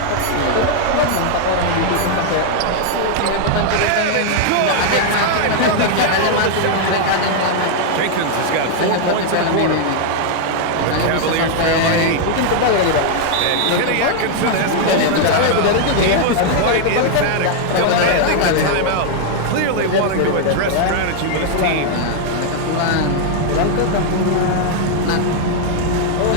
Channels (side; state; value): both; different; correlation 0.00